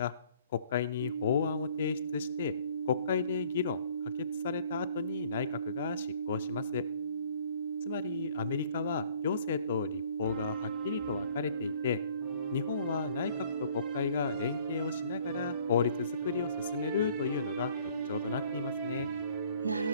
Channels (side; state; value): both; inverted; correlation -0.58